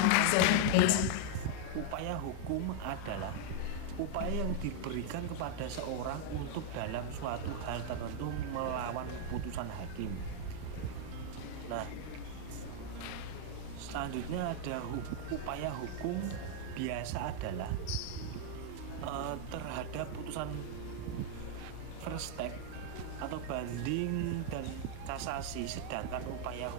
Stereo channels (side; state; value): both; different; correlation 0.00